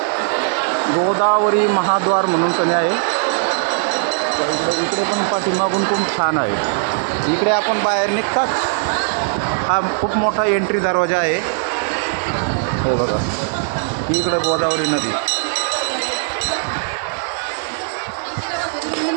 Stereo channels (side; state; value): left; silent; digital silence